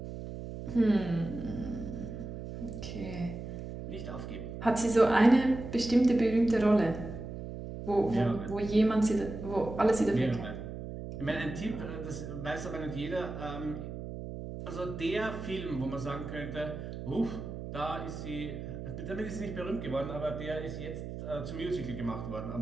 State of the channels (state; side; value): noise; right; hum, 8 dB below the sound